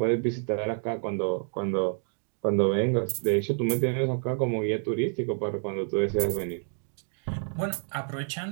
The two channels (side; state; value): left; silent; 56 dB below the other